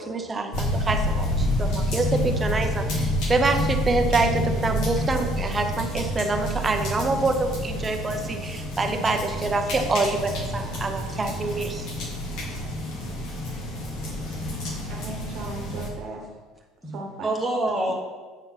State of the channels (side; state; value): both; normal; correlation 0.65